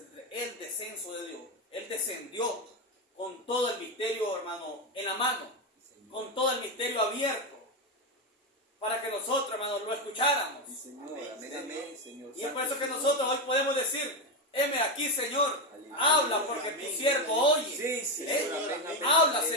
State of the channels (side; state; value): both; normal; correlation 0.10